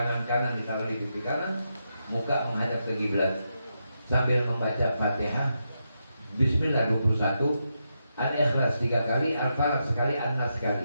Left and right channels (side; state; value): both; inverted; correlation -0.84